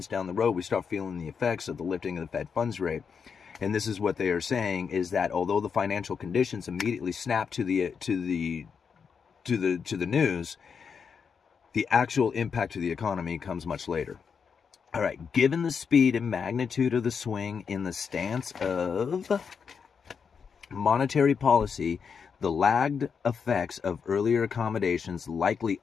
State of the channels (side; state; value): right; quieter; 6.3 dB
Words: down the road, we start feeling the effects of the lifting of the Fed funds rate. And this is what they are saying, is that although the financial conditions immediately snap to the news, the actual impact to the economy comes much later. All right, given the speed and magnitude of the swing in the stance of monetary policy, the lagged effects of earlier accommodations likely